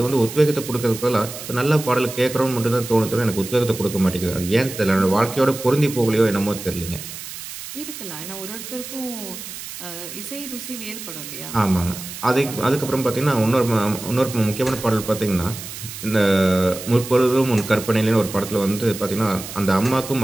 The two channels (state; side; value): noise; right; hiss, 11 dB below the sound